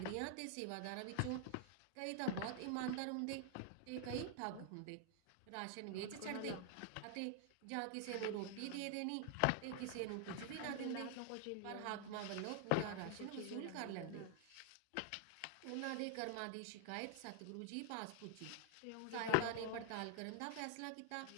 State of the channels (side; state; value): both; different; correlation 0.00